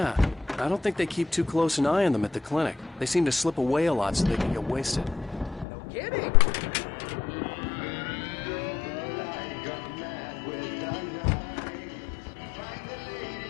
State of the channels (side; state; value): right; drops out; at 5.7 s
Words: I don't think they keep too close an eye on them at the clinic. They seem to slip away a lot so they can get wasted. No kidding.